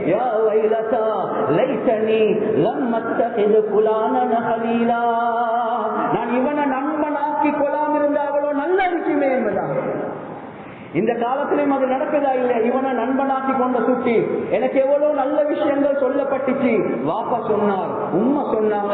யா வைலதா லைதனி லம் அத்தகிது ஃபுலானன் ஹலீலா. நான் இவனை நண்பனாக்கி கொள்ளாம இருந்தாவளோ நல்ல இருக்குமே என்பதாக. இந்த காலத்திலும் அது நடக்குதா இல்ல? இவனை நண்பனாக்கி கொண்ட சுட்டி எனக்கு எவ்வளவு நல்ல விஷயங்கள் சொல்லப்பட்டுச்சு. வாப்பா சொன்னார், உம்மா சொன்னாங்க,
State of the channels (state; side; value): identical; both; correlation 1.00